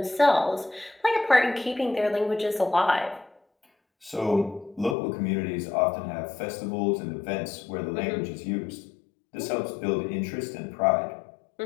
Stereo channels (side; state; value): right; drops out; at 5.0 s